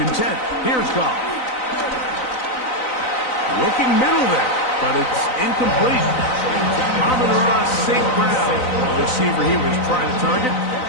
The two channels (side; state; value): right; late; 3.9 ms